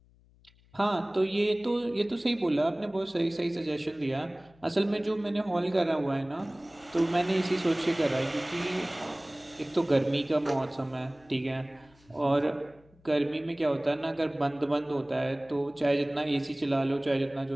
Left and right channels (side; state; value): left; noise; hum, 29 dB below the sound